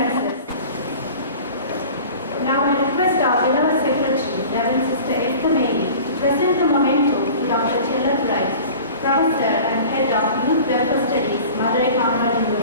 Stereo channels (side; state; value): both; inverted; correlation -0.41